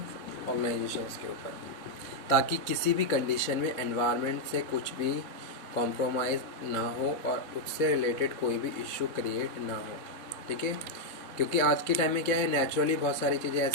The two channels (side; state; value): right; late; 3.7 ms